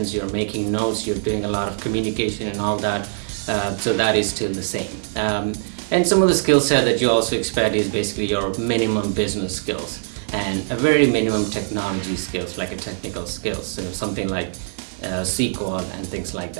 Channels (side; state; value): left; silent; digital silence